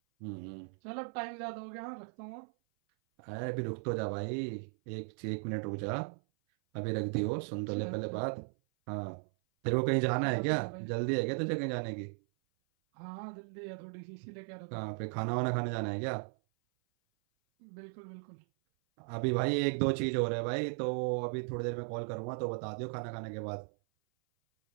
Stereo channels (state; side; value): silent; left; 53 dB below the other